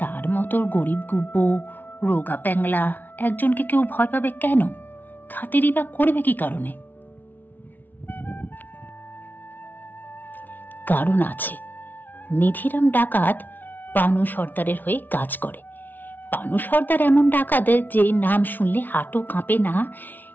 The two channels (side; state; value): right; late; 0.085 ms